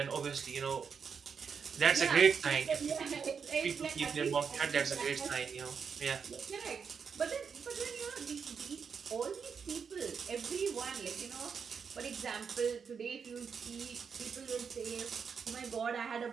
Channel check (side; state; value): left; quieter; 6.3 dB